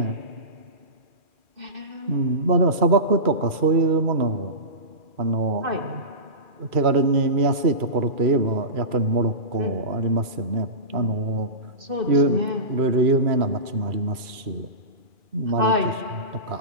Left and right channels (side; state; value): left; late; 2.4 ms